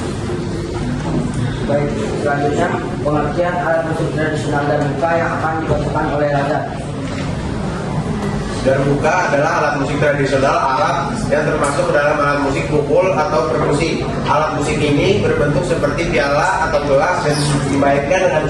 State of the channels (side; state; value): both; identical; correlation 1.00